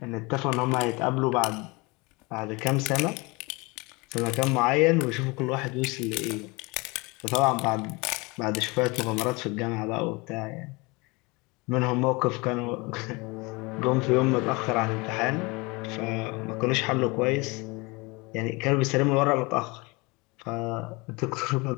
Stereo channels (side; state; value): right; quieter; 26.1 dB